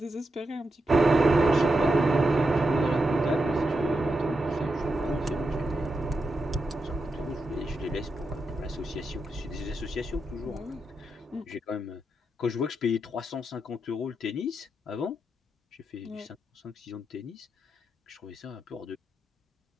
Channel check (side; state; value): both; normal; correlation 0.87